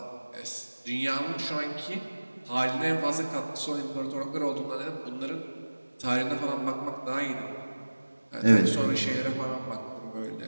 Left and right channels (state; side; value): inverted; both; correlation -1.00